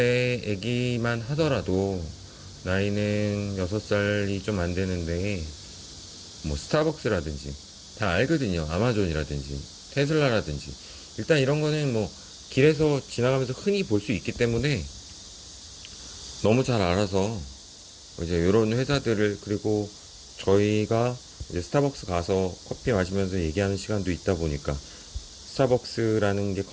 애기만 하더라도 나이는 6살이 좀 안 되는데 뭐 스타벅스라든지 다 알거든요. 아마존이라든지 테슬라라든지. 일단 이런 거는 뭐 길에서 지나가면서 흔히 볼 수 있기 때문에 너무 잘 알아서 이제 이런 회사들을, 그리고 저희가 이제 스타벅스 가서 커피 마시면서 얘기하는 시간도 있다 보니까 스타벅스라는 게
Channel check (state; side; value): identical; both; correlation 1.00